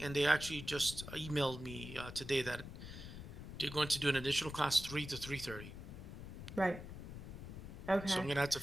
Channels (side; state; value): left; noise; rumble, 10 dB below the sound